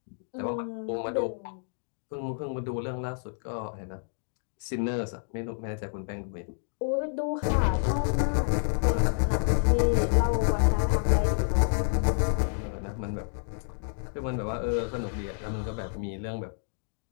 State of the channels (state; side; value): silent; right; digital silence